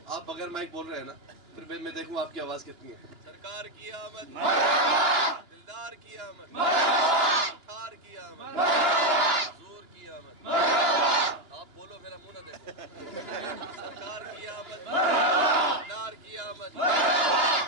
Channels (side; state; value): left; late; 2.9 ms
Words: آپ بغیر مائک بول رہے ہیں نا, پھر میں دیکھوں آپ کی آواز کتنی ہے. سرکار کی آمد, دلدار کی آمد, تھار کی آمد, حضور کی آمد. آپ بولو میرا منہ نہ دیکھو. سرکار کی آمد, دلدار کی آمد,